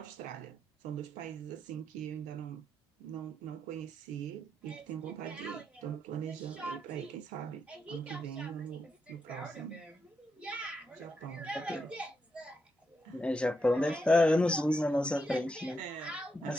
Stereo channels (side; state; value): both; normal; correlation 0.82